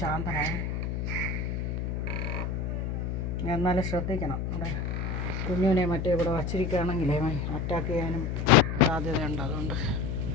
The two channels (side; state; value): left; noise; hum, 2 dB below the sound